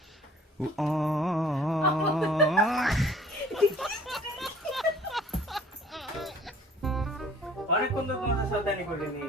অনেকক্ষণ তো তোমাদের সাবধানি করিনি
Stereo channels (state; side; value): normal; both; correlation 0.52